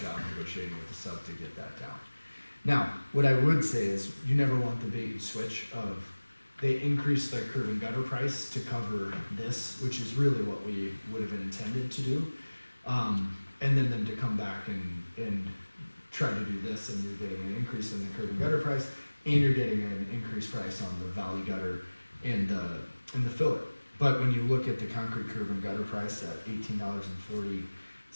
job negotiating with the sub to get that down. Now, what I would say is, you never want the bait and switch of, they increase their curb and gutter price to cover this, which is really what we would have intended to do. And then them to come back and try to do this, and you're getting an increase in the curb and gutter price, and you're getting an increased price on the valley gutter and the fillet. But when you look at the concrete curb and gutter price at $18.40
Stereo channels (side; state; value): both; inverted; correlation -1.00